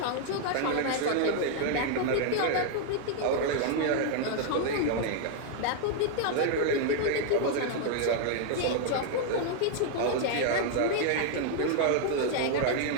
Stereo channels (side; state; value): both; different; correlation 0.00